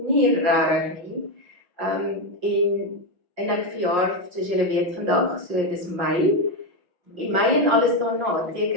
regtig nie. En ek verjaar, soos julle weet vandag, so dis Mei. En Mei en alles daarna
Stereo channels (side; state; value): left; late; 5.5 ms